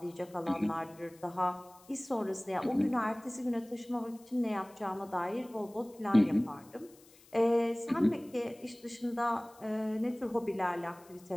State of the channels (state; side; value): noise; left; hiss, 26 dB below the sound